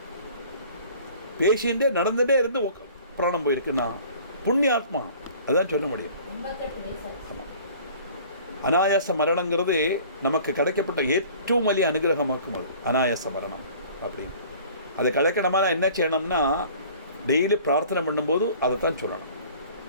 பேசிகிட்டே நடந்துகிட்டே இருந்து பிராணம் போயிருக்குன்னா புண்ணியாத்மா அதுதான் சொல்ல முடியும். ஆமாம், அனாயாச மரணங்கிறது நமக்கு கிடைக்கப்பட்ட ஏற்றவும் வலிய அனுகிரகமாக்கும். அது அனாயாச மரணம் அப்படின்னு அதை கிடைக்கணுமா என்ன செய்யணும்னா டெய்லி பிரார்த்தனை பண்ணும்போது அதை தான் சொல்லணும்.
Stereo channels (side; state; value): both; inverted; correlation -0.48